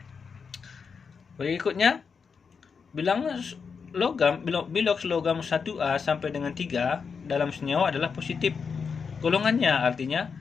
Berikutnya, bilangan biloks logam 1A sampai dengan 3 dalam senyawa adalah positif. Golongannya artinya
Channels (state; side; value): quieter; right; 5.8 dB